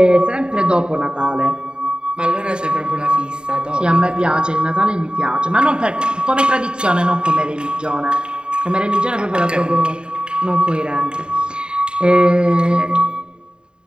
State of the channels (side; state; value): left; late; 0.051 ms